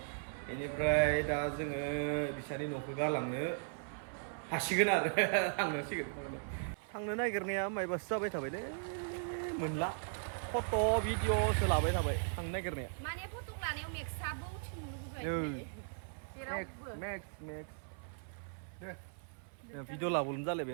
बेनिफ्राय दा जोङो बिसानि न'खौ गालांनो हासिगोन आरो थांनांसिगोन थांनो नागिरनाया मायबासो जाबाय थाबायलै मोनला फट' भिडिअ'सो लाबाय थाबाय थांनो नागिरनाया माने फट' लानायाव मेक्सआबो उथिनो लुबैबाय मेक्स भिडिअ' लाबोनो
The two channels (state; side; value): silent; left; 53 dB below the other